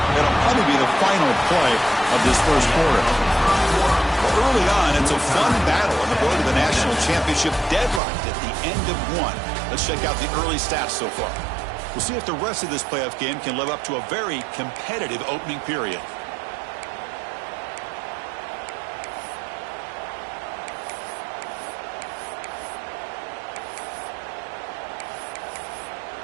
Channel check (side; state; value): left; drops out; at 8.0 s